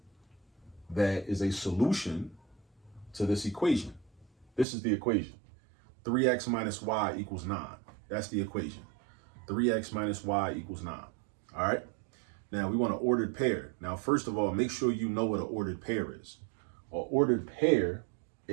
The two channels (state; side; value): drops out; left; at 4.7 s